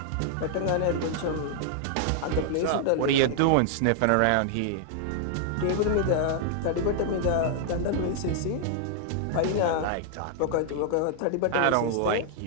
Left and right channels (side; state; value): both; different; correlation -0.01